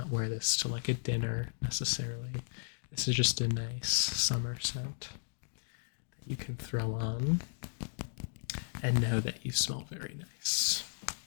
wear this to like a dinner necessarily. This is just a nice summer scent that you can throw on and know that you smell very nice.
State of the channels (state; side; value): silent; right; digital silence